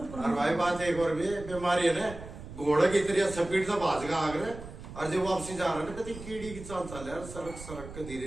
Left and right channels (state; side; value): noise; right; rumble, 13 dB below the sound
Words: और भाई बात एक और भी बीमारी है ना, घोड़े की तरह स्पीड से भाज का आगे और जब वापसी जा रहा है ना, कभी कीड़ी की चाल चल रहा है, सड़क के धीरे